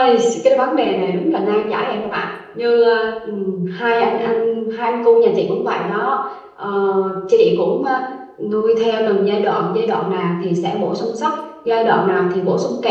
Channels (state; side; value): identical; both; correlation 1.00